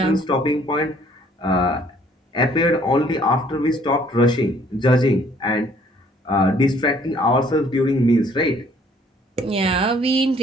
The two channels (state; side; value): normal; both; correlation 0.60